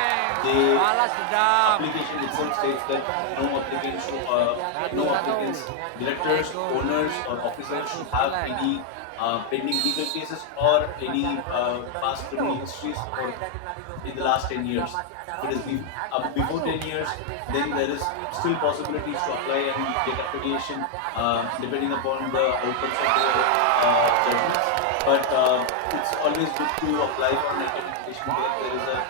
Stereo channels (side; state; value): both; different; correlation 0.00